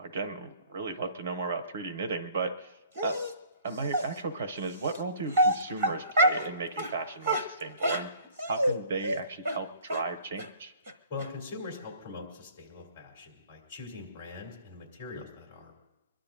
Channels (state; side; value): inverted; both; correlation -0.53